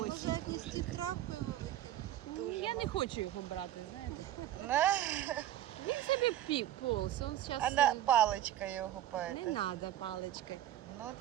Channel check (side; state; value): left; quieter; 12.9 dB